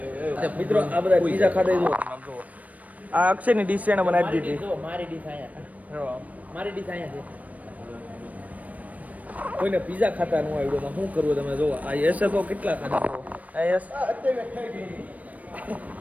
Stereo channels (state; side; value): late; left; 0.070 ms